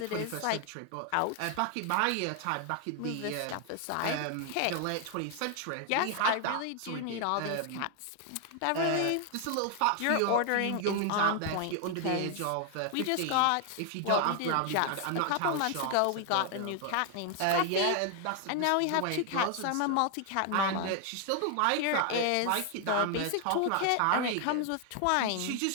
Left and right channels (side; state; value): both; different; correlation 0.00